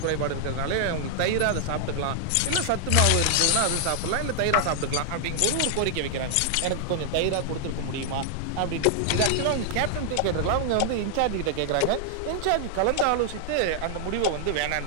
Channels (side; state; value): both; different; correlation 0.00